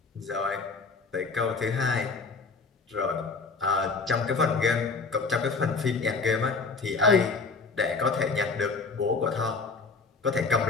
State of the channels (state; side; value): quieter; right; 4.4 dB